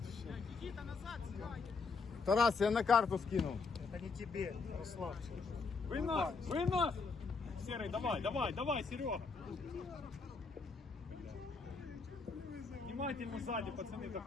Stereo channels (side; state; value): right; quieter; 4.5 dB